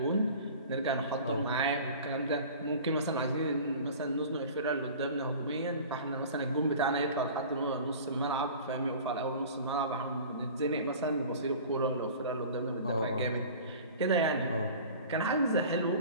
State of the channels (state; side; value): inverted; both; correlation -0.41